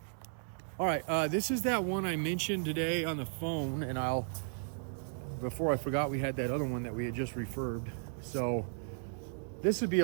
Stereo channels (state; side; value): silent; left; digital silence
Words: all right, this is that one I mentioned today on the phone, and before I forgot, we had that other one that we had just refurbed. So this would be